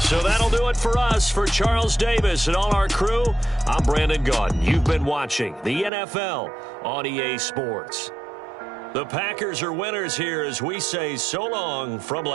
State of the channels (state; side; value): drops out; left; at 5.9 s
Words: So that'll do it for us. For Charles Davis and all our crew, I'm Brandon Gaudin. You've been watching the NFL on EA Sports. The Packers are winners here as we say so long from